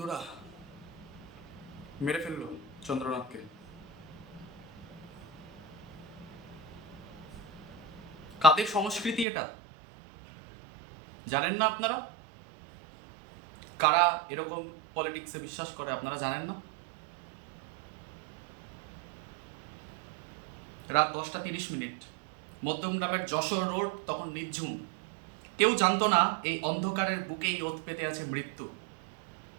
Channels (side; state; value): left; drops out; at 9.2 s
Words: মেরে ফেললো চন্দ্রনাথকে। কাদের সংস্কৃতি এটা জানেন না আপনারা? কারা এরকম পলিটিক্সে বিশ্বাস করে আপনারা জানেন না? রাত 10টা 30 মিনিট, মধ্যমগ্রামের যশোর রোড তখন নিঝুম। কেউ জানতো না এই অন্ধকারের বুকেই ওত পেতে আছে মৃত্যু।